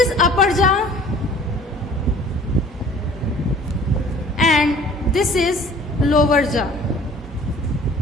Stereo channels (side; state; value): both; normal; correlation 0.50